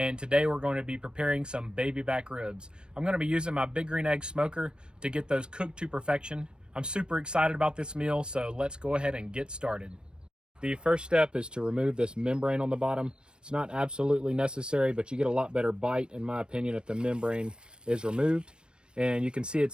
today we're going to be preparing some baby back ribs. I'm going to be using my big green egg smoker to get those cooked to perfection. I'm super excited about this meal, so let's go ahead and get started. The first step is to remove this membrane on the bottom. It's not absolutely necessary, but you get a lot better bite, in my opinion, if the membrane is removed. And you can see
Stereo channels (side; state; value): left; late; 0.053 ms